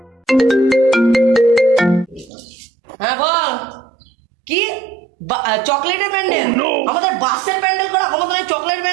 হ্যাঁ বল, কি চকলেটের প্যান্ডেল? আমাদের বাসের প্যান্ডেল করা ক্ষমতা নেই, চকলেট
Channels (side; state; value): left; drops out; at 2.3 s